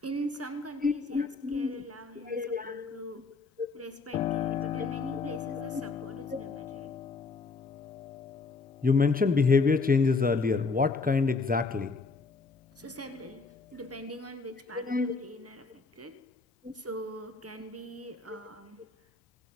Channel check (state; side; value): quieter; right; 4.2 dB